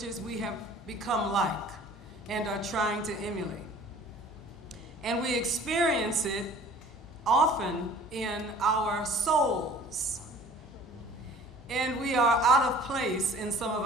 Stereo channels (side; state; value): both; normal; correlation 0.49